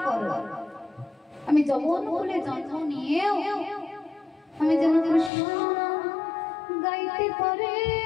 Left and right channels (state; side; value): drops out; right; at 5.3 s